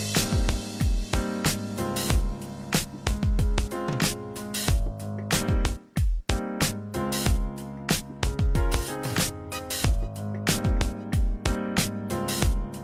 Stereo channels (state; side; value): identical; both; correlation 1.00